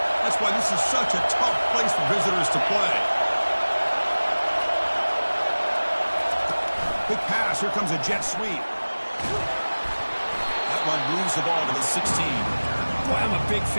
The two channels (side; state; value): both; inverted; correlation -1.00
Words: That's why this is such a tough place for visitors to play. Quick pass. Here comes a jet sweep. That one moves the ball to the 16. Boy, I'm a big